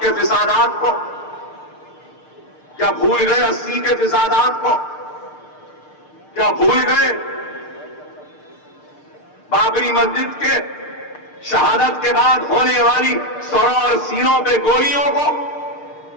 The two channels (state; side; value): late; right; 6.6 ms